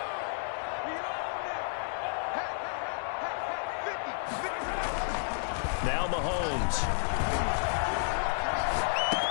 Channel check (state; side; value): silent; right; digital silence